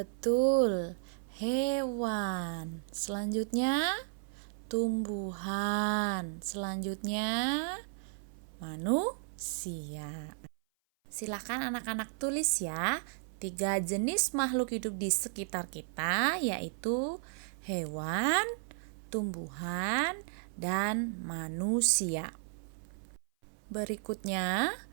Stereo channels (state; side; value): silent; left; 55 dB below the other